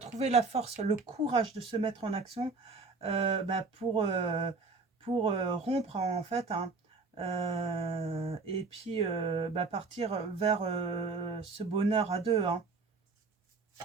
la force, le courage de se mettre en action, bah, pour rompre, en fait, hein, et puis bah, partir vers ce bonheur à deux, hein,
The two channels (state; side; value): quieter; left; 4.1 dB